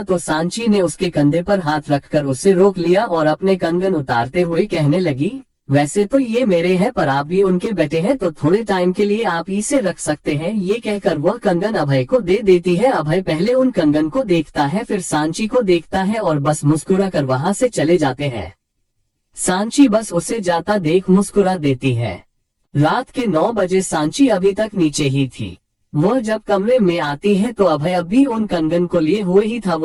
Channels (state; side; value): identical; both; correlation 1.00